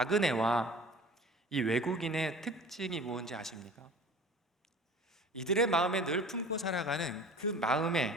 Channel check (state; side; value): normal; both; correlation 0.43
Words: 이 외국인의 특징이 무엇인지 아십니까? 이들의 마음에 늘 품고 살아가는 그